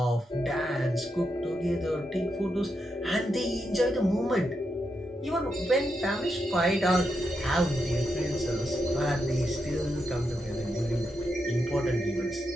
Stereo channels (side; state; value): both; normal; correlation 0.84